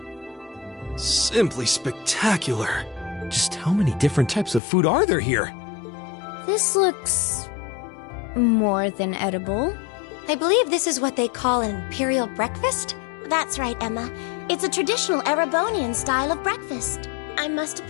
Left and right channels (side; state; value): right; drops out; at 4.6 s